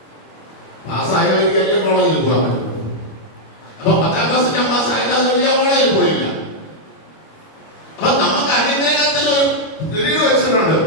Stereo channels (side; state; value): right; late; 25 ms